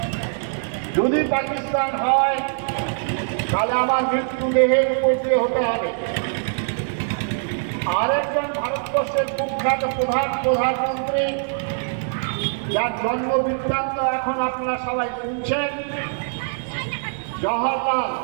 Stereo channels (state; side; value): silent; left; digital silence